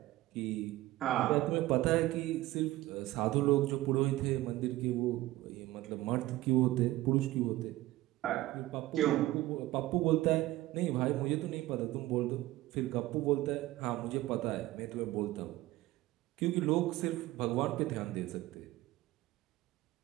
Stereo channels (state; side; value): quieter; left; 17.1 dB